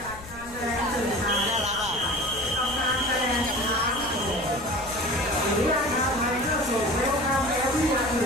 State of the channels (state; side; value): noise; left; rumble, 17 dB below the sound